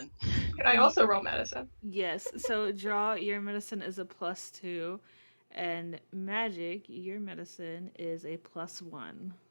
Could I also roll medicine? Yes, so draw, your medicine is a +2, and magic, your medicine is a +1.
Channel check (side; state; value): both; inverted; correlation -1.00